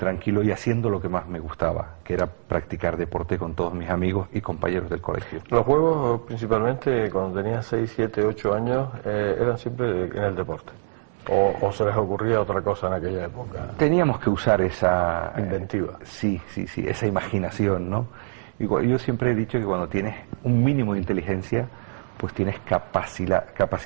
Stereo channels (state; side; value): silent; left; digital silence